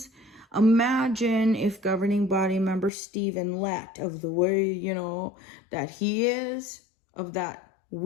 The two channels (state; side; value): drops out; right; at 2.9 s